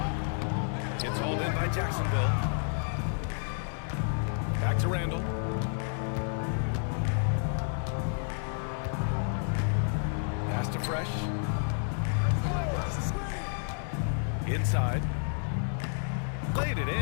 Gets hauled in by Jacksonville. Back to Randall. Pass to Fresh. Inside. Played it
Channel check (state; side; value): silent; right; 58 dB below the other